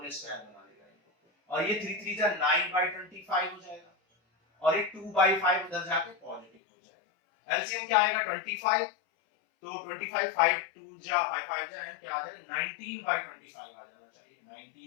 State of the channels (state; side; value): drops out; right; at 6.5 s